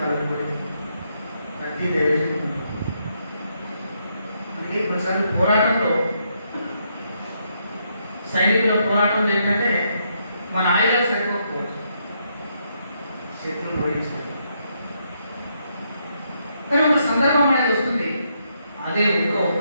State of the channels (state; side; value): inverted; both; correlation -0.77